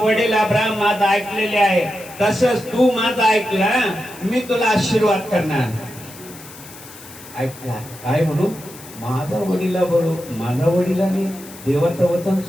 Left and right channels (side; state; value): left; noise; hiss, 18 dB below the sound